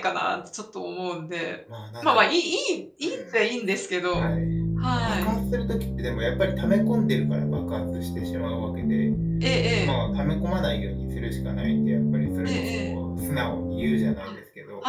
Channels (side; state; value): both; identical; correlation 1.00